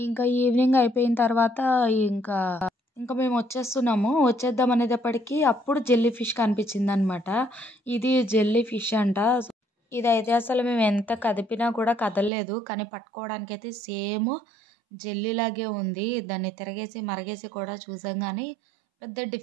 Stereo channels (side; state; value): left; drops out; at 12.3 s